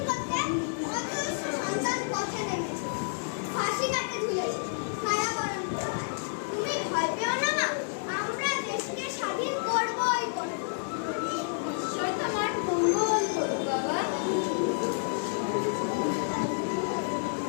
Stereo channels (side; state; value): right; silent; 58 dB below the other